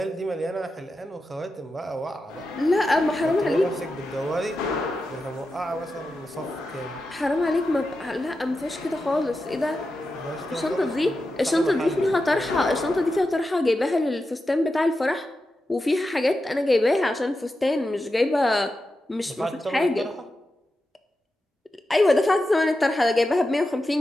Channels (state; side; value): normal; both; correlation 0.90